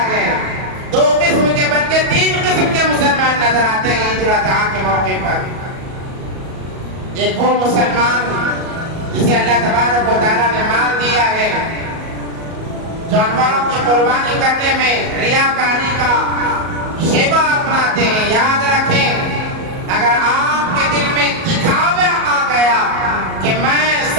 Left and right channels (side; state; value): left; late; 37 ms